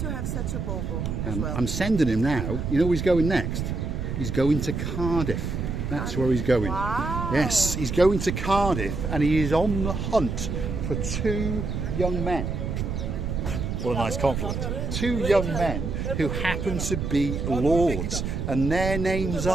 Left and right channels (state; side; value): noise; right; rumble, 3 dB below the sound